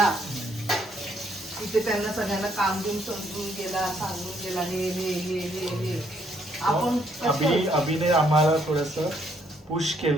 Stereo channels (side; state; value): both; normal; correlation 0.70